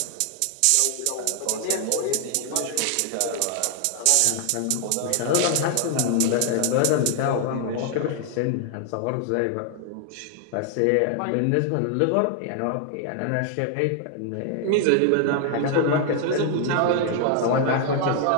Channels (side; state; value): both; different; correlation 0.00